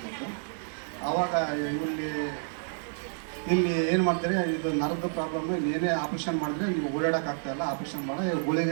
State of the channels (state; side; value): silent; left; 58 dB below the other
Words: ಆವಾಗ ಇಲ್ಲಿ ಏನು ಮಾಡ್ತಾರೆ, ಇದು ನರದ ಪ್ರಾಬ್ಲಮ್, ಏನೇ ಆಪ್ರೇಷನ್ ಮಾಡಿದ್ರೆ ನೀವು ಓಡಾಡೋಕ್ಕಾಗ್ತಾಯಿಲ್ಲ, ಆಪ್ರೇಷನ್ ಮಾಡಿ